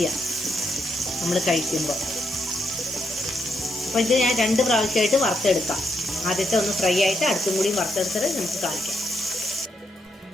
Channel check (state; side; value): normal; both; correlation 0.79